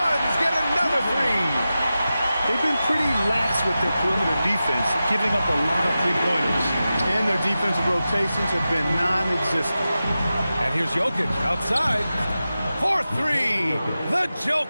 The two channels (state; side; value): inverted; both; correlation -0.93